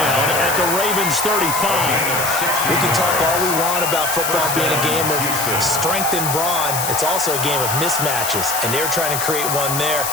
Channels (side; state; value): left; noise; hiss, 3 dB below the sound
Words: at the Ravens 35. We can talk all we want about football being a game of strength and brawn. It's also a game of mismatches. And they're trying to create one there,